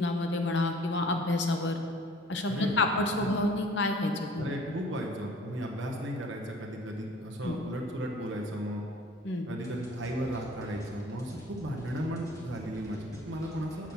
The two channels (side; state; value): both; normal; correlation 0.51